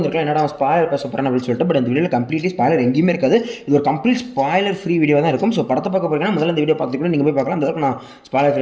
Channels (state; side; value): identical; both; correlation 1.00